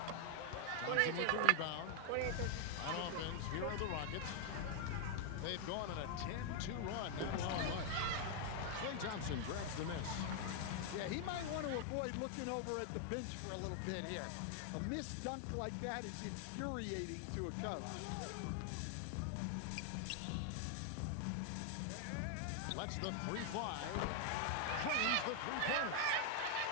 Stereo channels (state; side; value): different; both; correlation 0.00